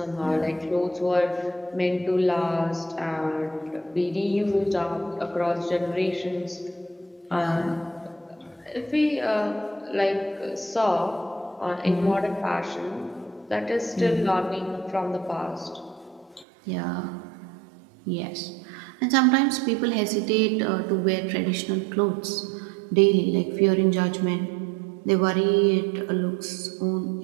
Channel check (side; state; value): left; drops out; at 16.4 s